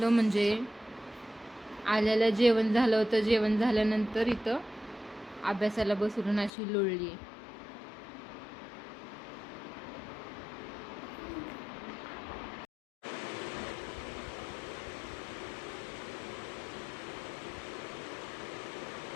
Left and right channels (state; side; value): drops out; right; at 6.5 s